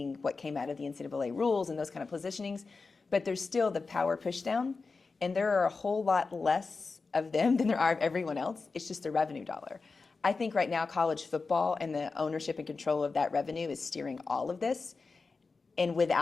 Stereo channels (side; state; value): right; quieter; 4.3 dB